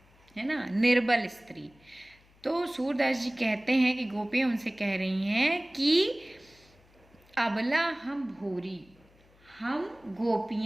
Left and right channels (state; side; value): noise; left; hum, 29 dB below the sound